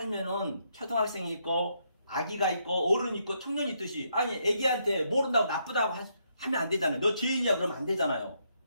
초등학생이 있고 아기가 있고 어른이 있고 청년이 있듯이 아니 애기한테 모른다고 나쁘다고 하면 안 되잖아요. 너 죄인이야 그러면 안 되잖아요.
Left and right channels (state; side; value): inverted; both; correlation -0.76